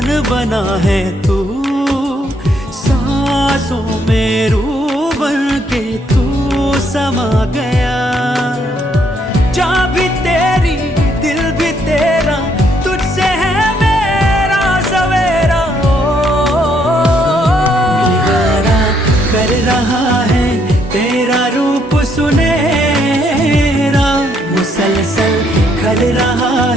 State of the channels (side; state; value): both; normal; correlation 0.71